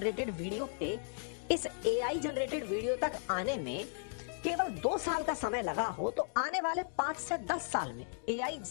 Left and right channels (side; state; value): right; silent; digital silence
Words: वीडियो थे, इस एआई जनरेटेड वीडियो तक आने में केवल 2 साल का समय लगा हो, तो आने वाले 5 से 10 साल में एआई